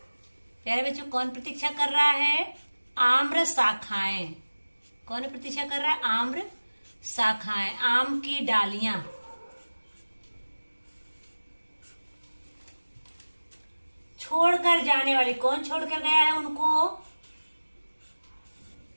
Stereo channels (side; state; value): both; inverted; correlation -1.00